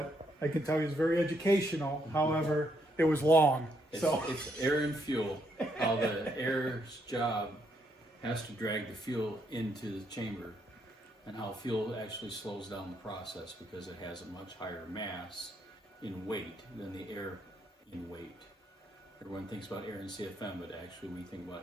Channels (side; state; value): both; normal; correlation 0.75